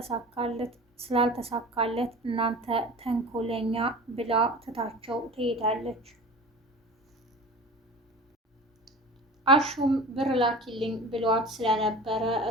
ስላልተሳካለት እናንተ ተንኮለኛ ብላ ትታቸው ትሄዳለች። አሹም ብር ላኪልኝ ብሏት ስለነበረ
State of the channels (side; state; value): both; normal; correlation 0.36